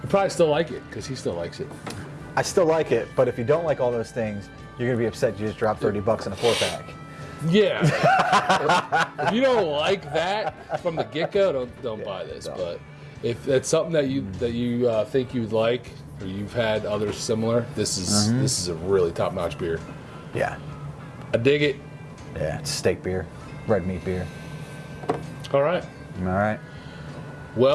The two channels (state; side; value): identical; both; correlation 1.00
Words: still like it, because he still likes it. I still like it, but if you don't like all those things, you're going to be upset you just dropped $30 in a 4-pack. Yeah. If you don't like that from the get-go, don't buy this. Don't. But if that's something that you think you would like, or you've had others similar, this is a really top-notch beer. Yeah. I dig it. Yeah, it's steak beer, red meat beer. All right. All right.